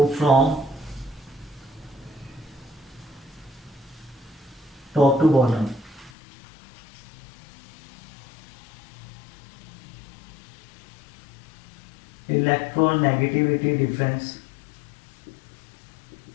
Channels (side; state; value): right; drops out; at 6.1 s